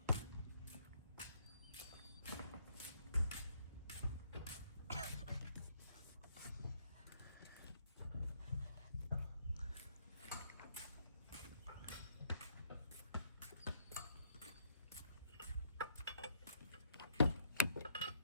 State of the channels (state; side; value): inverted; both; correlation -0.69